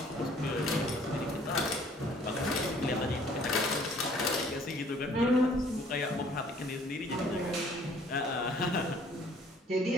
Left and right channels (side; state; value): both; normal; correlation 0.57